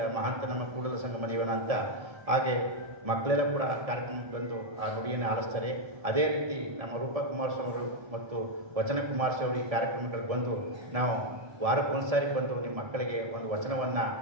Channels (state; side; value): late; left; 1.7 ms